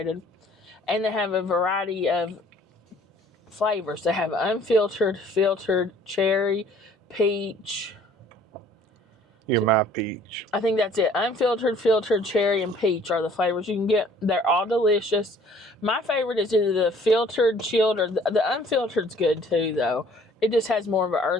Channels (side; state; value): both; normal; correlation 0.56